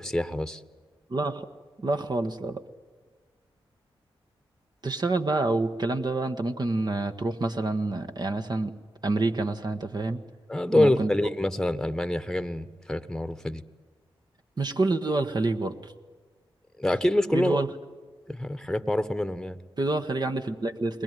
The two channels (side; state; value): both; normal; correlation 0.89